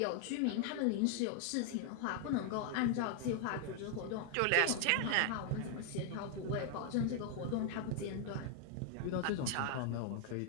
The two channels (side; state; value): both; different; correlation 0.00